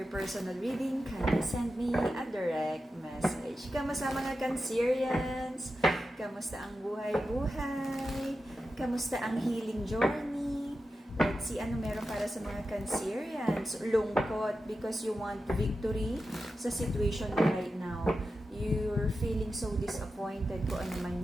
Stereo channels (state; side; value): normal; both; correlation 0.91